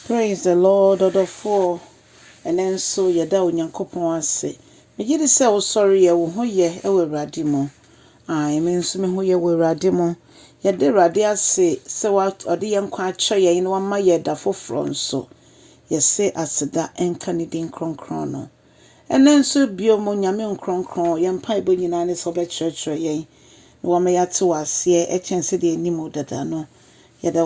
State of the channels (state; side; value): identical; both; correlation 1.00